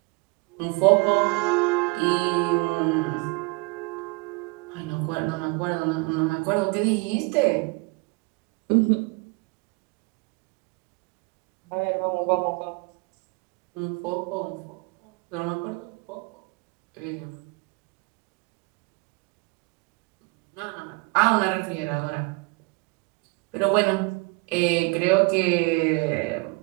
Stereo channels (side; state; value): left; quieter; 27.8 dB